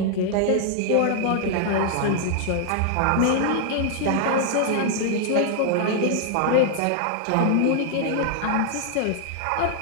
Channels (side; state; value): both; different; correlation 0.00